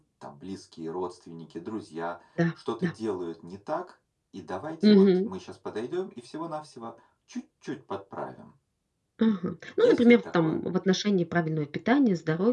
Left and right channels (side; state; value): both; identical; correlation 1.00